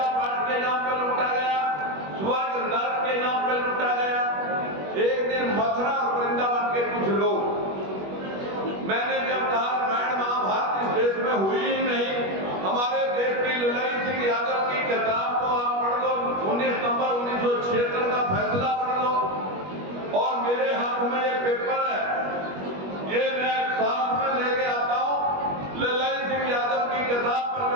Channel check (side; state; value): left; late; 21 ms